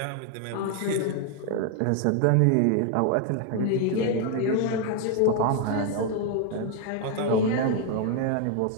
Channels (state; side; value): different; both; correlation 0.01